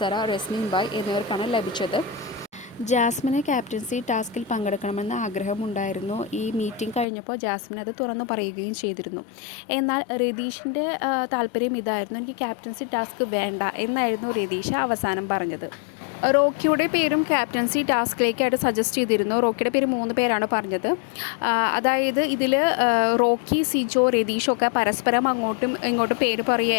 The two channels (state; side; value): drops out; right; at 7.1 s